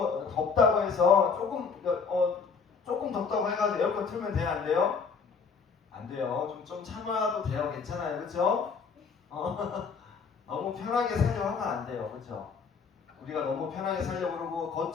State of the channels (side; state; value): right; quieter; 5.5 dB